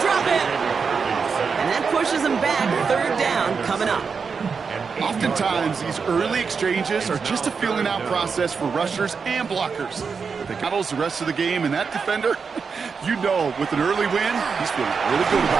drop it. And that pushes them back. 3rd down coming up. Oftentimes, these early exchanges are just a feeling out process for rushers and blockers. They battles the rest of the game, and that defender, you know, with an early win, he's feeling really good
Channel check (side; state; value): left; quieter; 5.5 dB